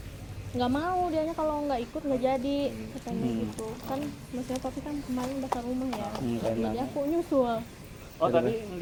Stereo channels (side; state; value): both; identical; correlation 1.00